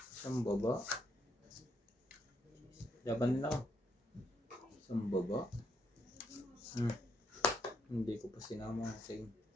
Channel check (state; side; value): normal; both; correlation 0.76